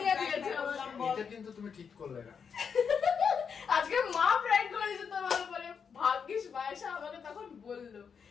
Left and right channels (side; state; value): right; quieter; 6.5 dB